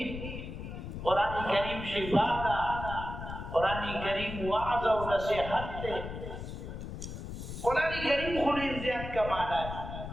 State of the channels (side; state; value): left; noise; rumble, 8 dB below the sound